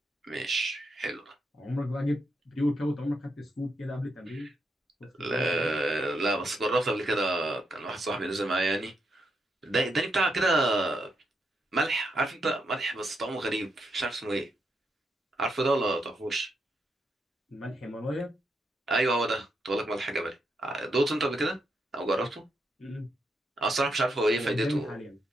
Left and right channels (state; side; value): normal; both; correlation 0.81